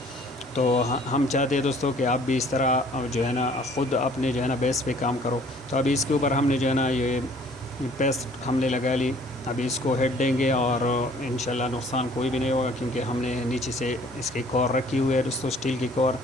तो हम चाहते हैं दोस्तों कि आप भी इस तरह जो है ना ख़ुद अपने जो है ना बेस पे काम करो। तो अभी इसके ऊपर हमने जो है ना ये पेस्ट हमने लगा ली। अभी इसको हेड देंगे और इंशाल्लाह नुकसान कोई भी नहीं होगा, क्योंकि हमने नीचे से इसकी कोर रखी हुई है दोस्तों, स्टील की कोर,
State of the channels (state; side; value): normal; both; correlation 0.56